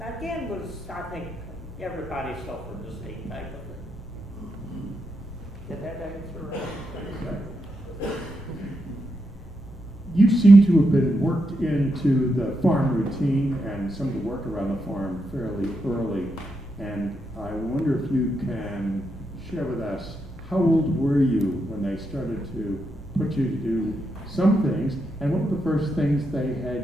I think everybody suffered the same type of thing. Did that answer? You seem to have been worked into the farm routine and some of the work around the farm fairly early. And I wonder if you can share with us, how old were you when they started to put you to do some things, and what were the first things they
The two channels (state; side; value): normal; both; correlation 0.83